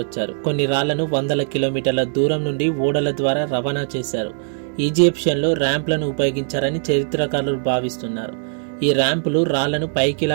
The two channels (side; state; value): left; silent; digital silence